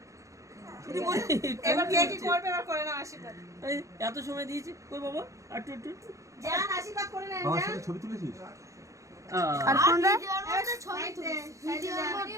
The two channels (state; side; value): late; left; 0.15 ms